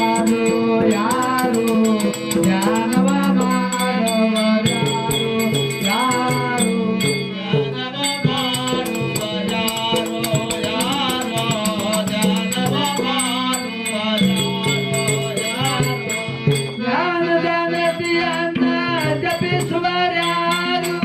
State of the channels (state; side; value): identical; both; correlation 1.00